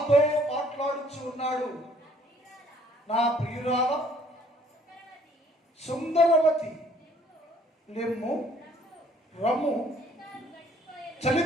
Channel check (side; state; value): both; normal; correlation 0.59